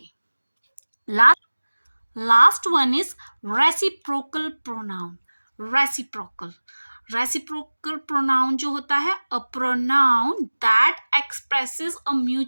Last one is reciprocal pronoun. Reciprocal pronoun जो होता है, a pronoun that expresses a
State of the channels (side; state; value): both; inverted; correlation -1.00